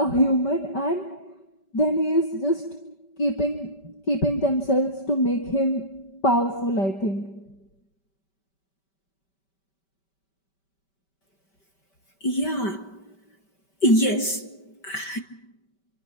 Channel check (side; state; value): right; late; 5.2 ms